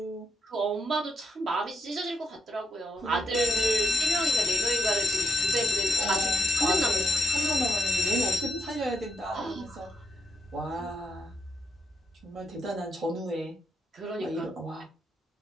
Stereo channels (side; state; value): both; normal; correlation 0.79